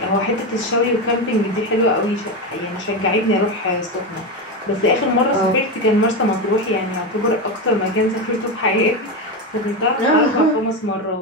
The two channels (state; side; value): normal; both; correlation 0.15